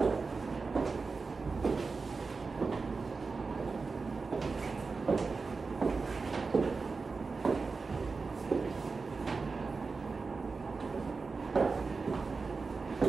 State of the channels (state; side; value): quieter; left; 4.3 dB